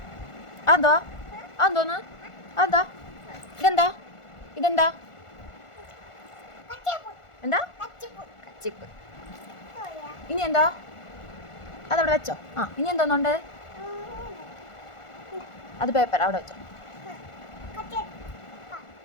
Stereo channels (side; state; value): right; late; 1.4 ms